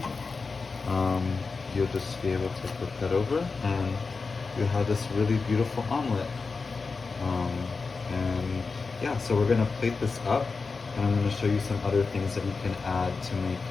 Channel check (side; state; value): right; quieter; 4.4 dB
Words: you'll just be able to flip that over and you have this really beautiful omelet. And yeah, so we're gonna plate this up and I'm gonna show you some other things that you can add to